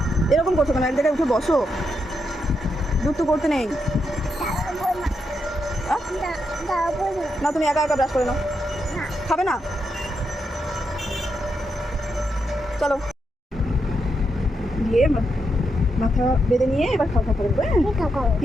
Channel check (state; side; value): normal; both; correlation 0.82